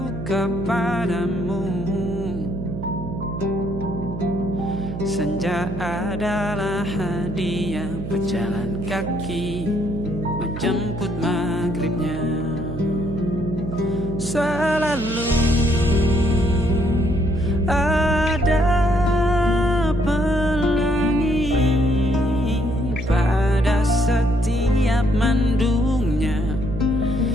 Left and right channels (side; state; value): right; noise; hum, 7 dB below the sound